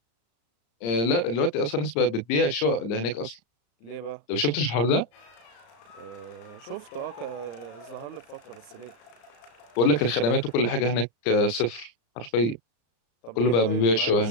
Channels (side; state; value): right; late; 34 ms